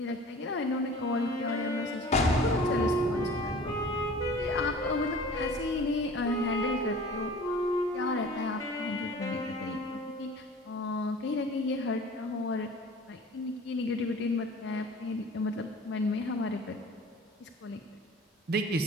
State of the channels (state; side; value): normal; both; correlation 0.44